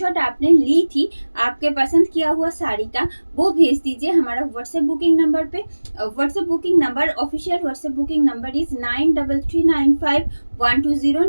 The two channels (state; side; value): inverted; both; correlation -1.00